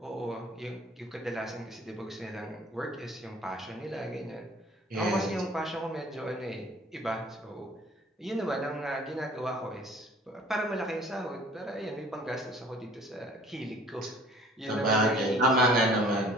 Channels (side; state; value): both; normal; correlation 0.52